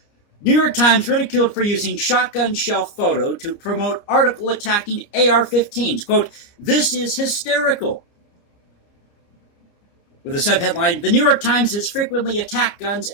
New York Times ridiculed for using shotgun shell photo to promote article attacking AR-15s. Quote, this is hysterical. With a subheadline, the New York Times has frequently attacked guns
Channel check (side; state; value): right; late; 29 ms